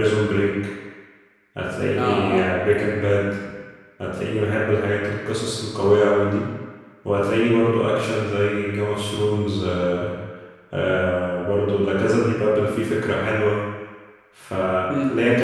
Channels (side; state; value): both; identical; correlation 1.00